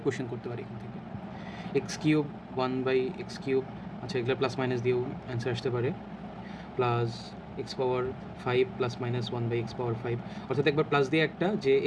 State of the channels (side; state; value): both; identical; correlation 1.00